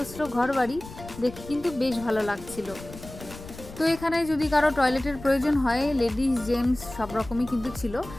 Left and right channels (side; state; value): left; noise; rumble, 15 dB below the sound